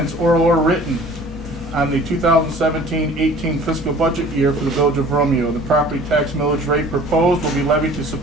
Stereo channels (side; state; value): both; normal; correlation 0.48